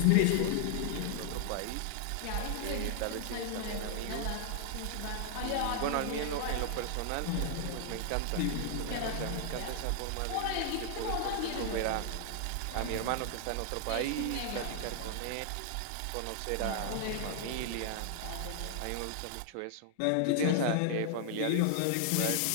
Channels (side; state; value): both; different; correlation 0.00